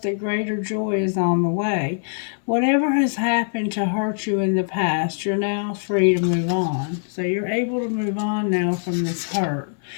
that greater joy is on the way. Whatever has happened to hurt you in the past, you're now free to move on. So you're able to move on now from this hurt.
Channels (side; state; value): right; silent; 64 dB below the other